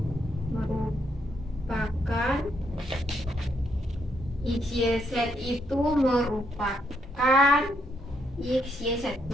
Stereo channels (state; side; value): normal; both; correlation 0.75